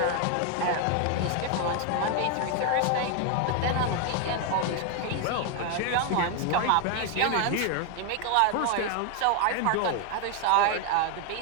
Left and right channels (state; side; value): different; both; correlation 0.01